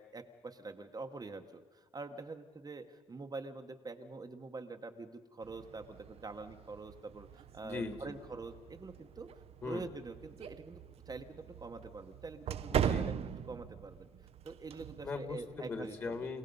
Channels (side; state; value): left; quieter; 4.0 dB